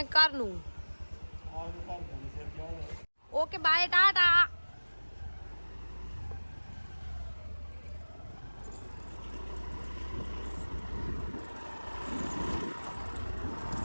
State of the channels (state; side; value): inverted; both; correlation -1.00